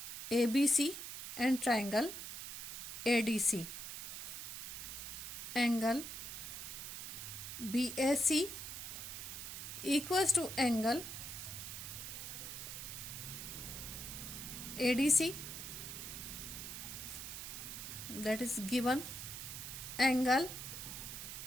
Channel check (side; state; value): right; noise; hiss, 7 dB below the sound